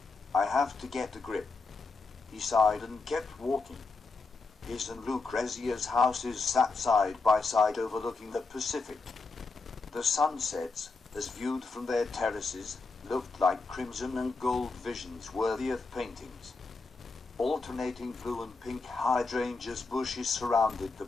I have to get a grip. He sighed and kept walking. His and Lucrezia's houses sat side by side overlooking the Pacific. The sunsets, as viewed from their terraces, looked like crimson and gold visions worthy of paintings. Alternating blue and pink hydrangeas bushes surrounded the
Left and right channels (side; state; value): right; quieter; 3.9 dB